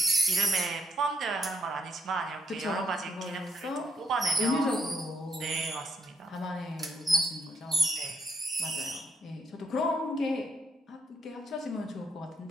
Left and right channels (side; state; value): both; normal; correlation 0.75